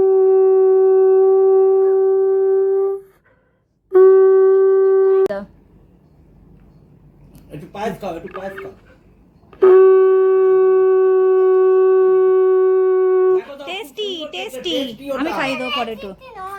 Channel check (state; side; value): identical; both; correlation 1.00